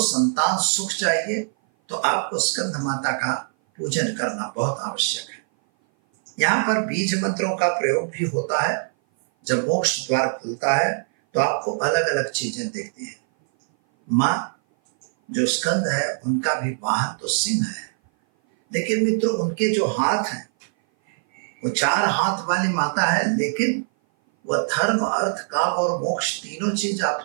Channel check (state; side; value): silent; left; 57 dB below the other